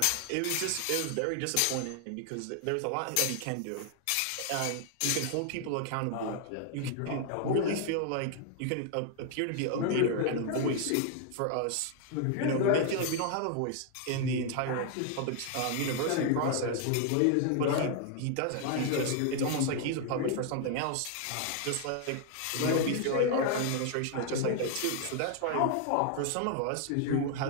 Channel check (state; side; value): different; both; correlation 0.00